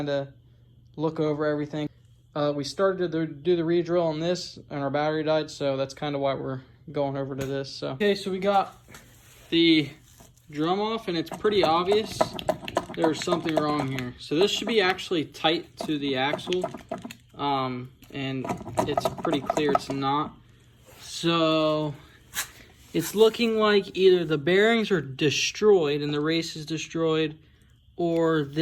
of look over everything. We started to do the re-drill on this and our battery died, so that's kind of why we're going over to this. So okay, so we got the drum off, and it's pretty obvious there's something wrong here. So this should be actually tight to the axle, and it's pretty clear it's not. So it's looking like either the bearings are destroyed and the race is destroyed, or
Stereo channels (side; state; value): both; identical; correlation 1.00